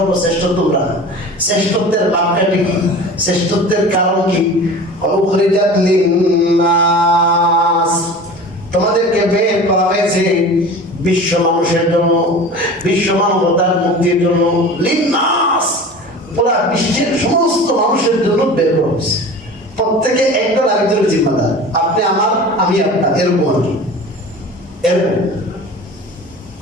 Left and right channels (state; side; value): normal; both; correlation 0.37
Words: তোমরা। শ্রেষ্ঠত্বের বাক্যটি কি? শ্রেষ্ঠত্বের কারণ কি? উখরিজাত লিন-নাস, তোমাদেরকে বের করা হয়েছে বিশ্ব মানুষের জন্য, বিশ্ব মানবতার মুক্তির জন্য। লিন-নাস, পুরা বিশ্বের সমস্ত মানুষের জন্য বের করা হয়েছে। প্রত্যেকে একজন আরেকজনের জিম্মাদার, আপনি আমার, আমি আপনার, এরকম আর কি। এরকম